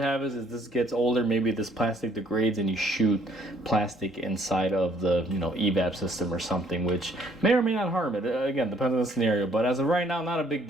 is this gets older, maybe this plastic degrades and you shoot plastic inside of the evap system or something, which may or may not harm it. Again, depends on the scenario. But as of right now, not a big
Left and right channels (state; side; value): normal; both; correlation 0.63